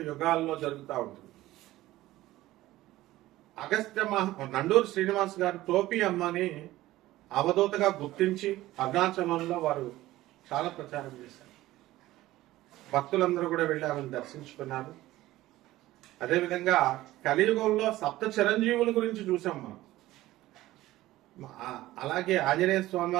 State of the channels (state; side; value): quieter; left; 16.4 dB